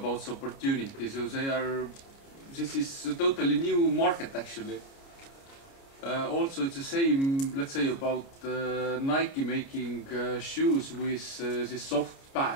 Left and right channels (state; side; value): late; right; 29 ms